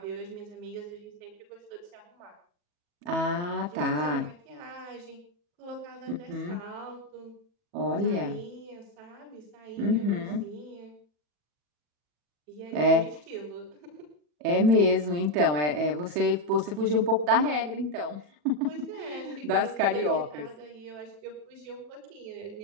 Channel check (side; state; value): left; late; 40 ms